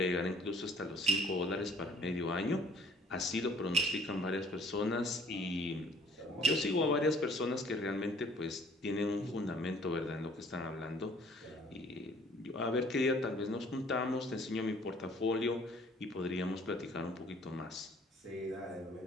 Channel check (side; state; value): both; normal; correlation 0.57